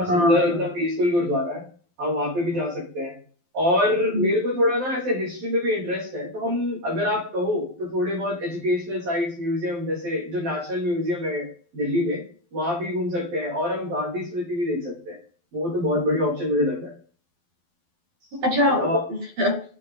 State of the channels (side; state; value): left; late; 12 ms